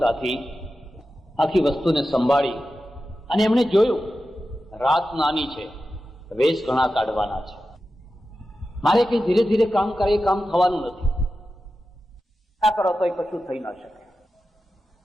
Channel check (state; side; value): normal; both; correlation 0.92